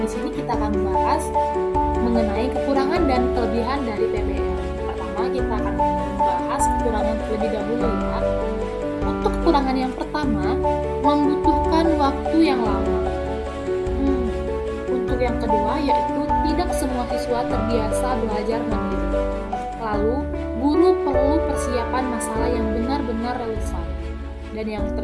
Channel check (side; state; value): both; identical; correlation 1.00